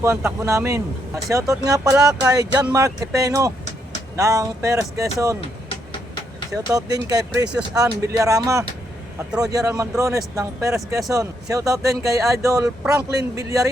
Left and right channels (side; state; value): both; normal; correlation 0.76